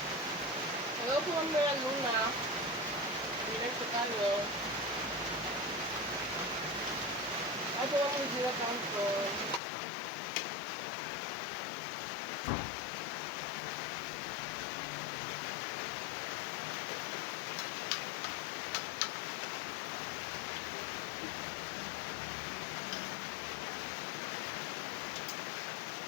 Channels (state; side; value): drops out; right; at 9.6 s